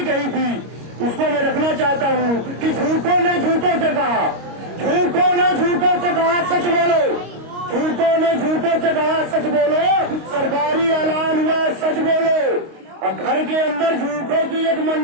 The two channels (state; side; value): late; left; 25 ms